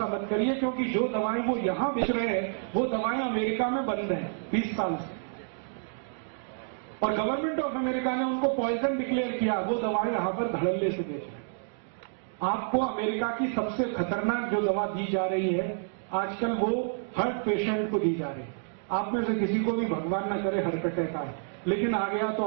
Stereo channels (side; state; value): left; silent; digital silence